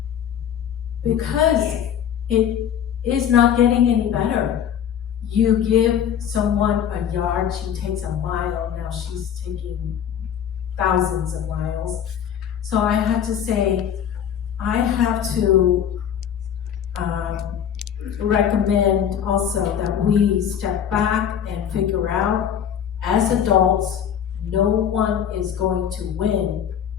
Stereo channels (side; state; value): right; quieter; 8.9 dB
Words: Because it is not getting any better. You give someone a yard, she takes a mile, now she's taking thousands of miles. So I have to say, I have to recommend also that we step back and figure out, as adults, no one is going to win.